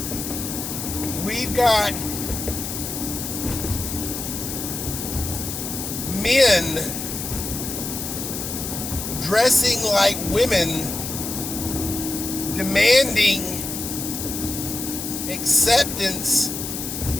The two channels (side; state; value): left; noise; hiss, 6 dB below the sound